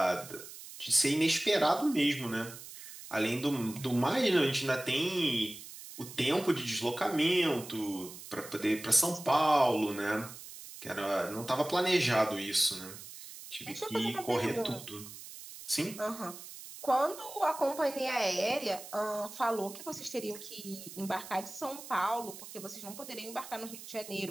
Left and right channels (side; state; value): right; noise; hiss, 14 dB below the sound